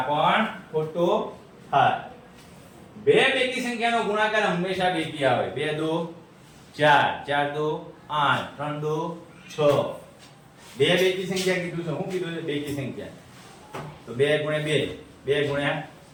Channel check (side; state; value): both; identical; correlation 1.00